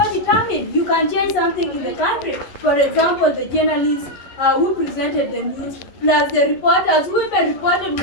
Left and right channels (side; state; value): right; late; 11 ms